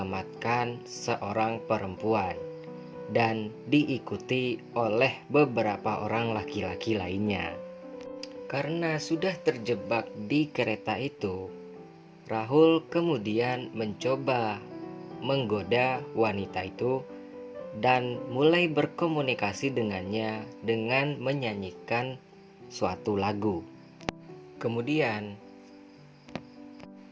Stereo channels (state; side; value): identical; both; correlation 1.00